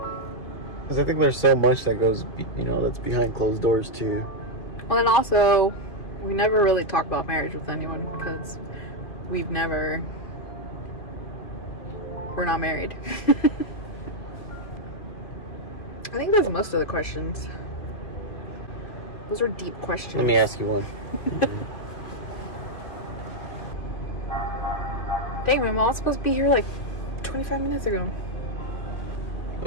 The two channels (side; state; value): right; late; 2.6 ms